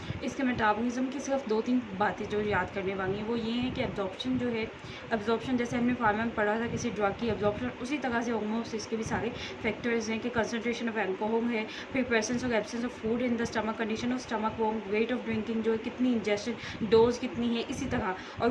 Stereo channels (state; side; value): identical; both; correlation 1.00